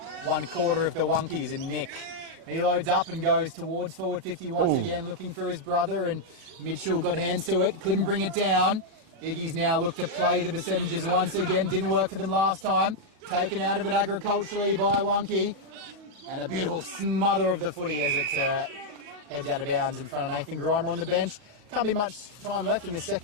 of the Wonkies and Nick. He loads up and goes towards forward 50 once again, looking for his brother, and Mitchell got hands to it, couldn't bring it down. Iggy's now looked to play the percentages once again, didn't work for them last time. Taken out of it agriculturally by Wonky, and a beautiful smother of the footy as it heads out of bounds in front of Nathan Grimer on the bench. Can't be much time left in this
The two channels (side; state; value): left; late; 38 ms